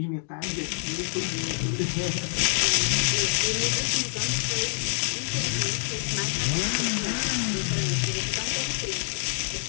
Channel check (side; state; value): right; silent; digital silence